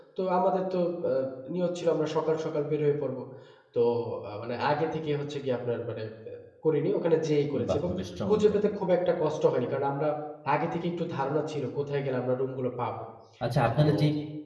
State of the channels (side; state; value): both; identical; correlation 1.00